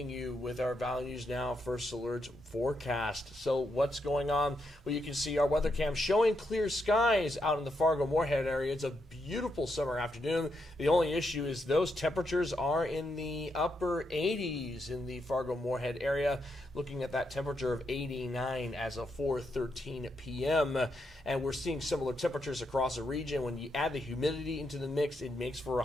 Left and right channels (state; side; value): normal; both; correlation 0.81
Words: you with our values now. First Alert forecast. So what's going on? Well, you can see our weather cam showing clear skies out in the Fargo-Moorhead area. It's a beautiful summer afternoon. The only issue is those temperatures are in the upper 80s in the Fargo-Moorhead area. Looking at that temperature of 89 as of 4:13 p.m. And we're seeing similar temperatures across the region. When you add the humidity into the mix, it makes for a